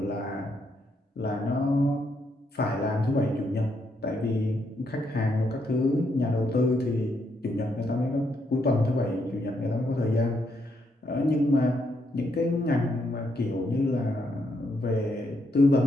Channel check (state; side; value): normal; both; correlation 0.77